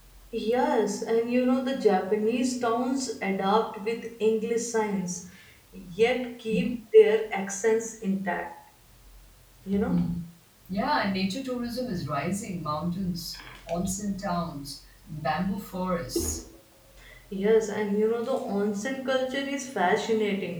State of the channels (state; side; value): identical; both; correlation 1.00